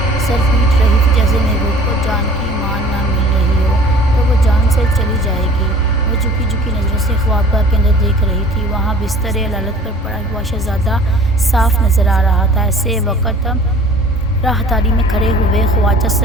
سر پیٹ رہی تھی جیسے محبوب کو جان کی مان نہ مل رہی ہو تو وہ جان سے چلی جائے گی۔ وہ جھکی جھکی نظروں سے خوابگاہ کے اندر دیکھ رہی تھی۔ وہاں بستر علالت پر پڑا ہوا شہزادہ صاف نظر آ رہا تھا۔ ایسے وقت راہداری میں کھڑے ہوئے خواجہ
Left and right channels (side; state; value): both; normal; correlation 0.48